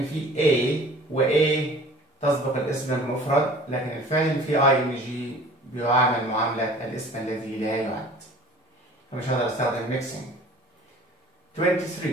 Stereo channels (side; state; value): both; normal; correlation 0.47